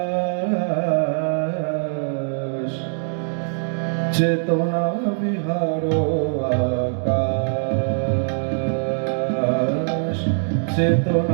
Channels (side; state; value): left; silent; digital silence